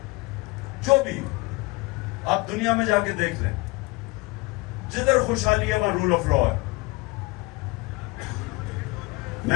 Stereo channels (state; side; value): quieter; right; 25.0 dB